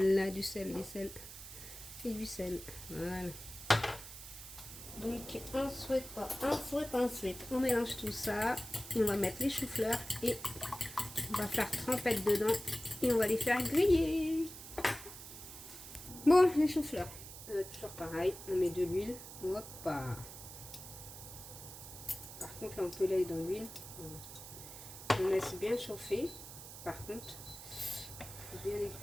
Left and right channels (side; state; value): right; noise; hiss, 13 dB below the sound